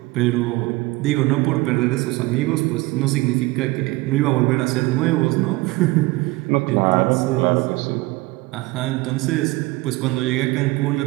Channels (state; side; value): quieter; left; 21.6 dB